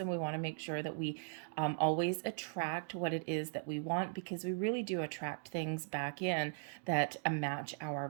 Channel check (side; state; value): left; silent; digital silence